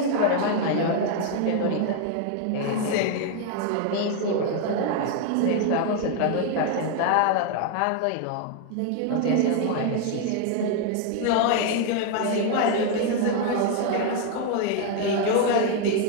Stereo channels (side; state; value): both; different; correlation 0.01